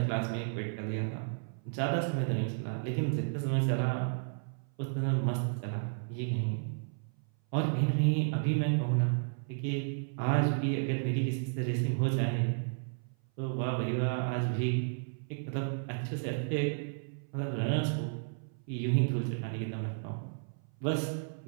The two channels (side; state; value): left; silent; 56 dB below the other